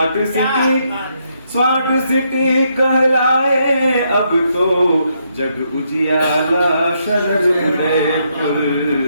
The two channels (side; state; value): both; inverted; correlation -0.77